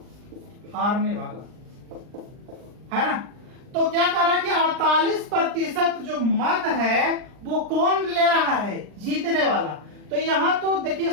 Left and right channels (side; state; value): left; late; 39 ms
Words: हारने वाला, है ना। तो क्या कर रहा है कि 48% जो मत है वो कौन ले रहा है, जीतने वाला। तो यहां तो देखिए